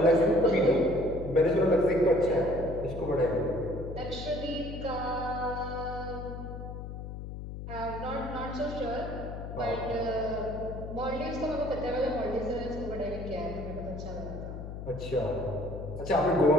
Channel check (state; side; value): noise; left; hum, 8 dB below the sound